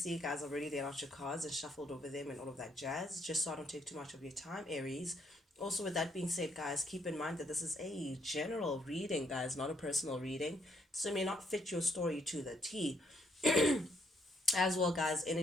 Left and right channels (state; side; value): normal; both; correlation 0.72